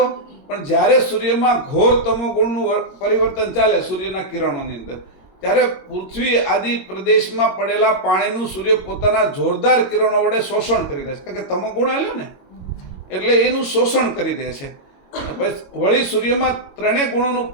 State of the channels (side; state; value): right; late; 22 ms